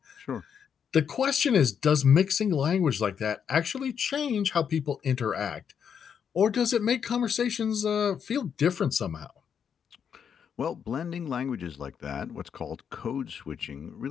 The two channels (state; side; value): quieter; right; 7.6 dB